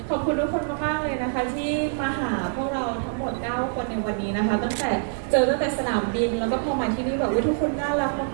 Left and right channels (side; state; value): left; silent; digital silence